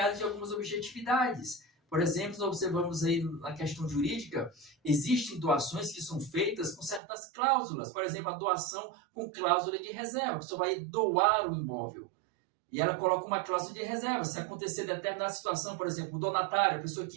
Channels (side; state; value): left; drops out; at 7.0 s